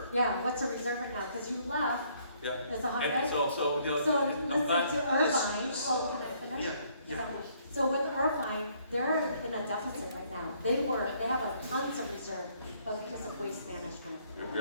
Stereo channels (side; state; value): both; inverted; correlation -0.65